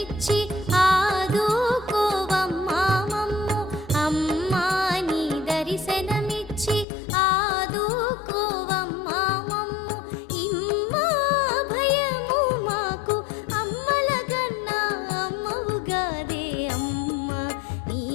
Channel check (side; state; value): right; drops out; at 6.9 s